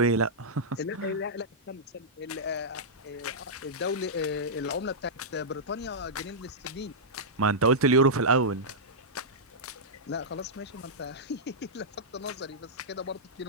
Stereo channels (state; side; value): normal; both; correlation -0.11